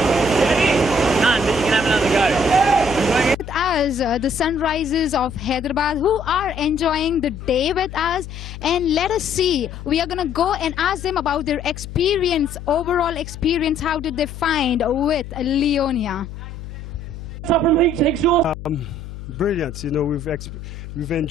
you can have another go. With us, the Sunrises of Hyderabad, who are enjoying the day with us, and let us see. We are going to go and ask them about their experience, overall experience. How did they find with Leonia? Up from Exhaust. Brilliant. You know, we've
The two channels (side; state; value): left; noise; hum, 11 dB below the sound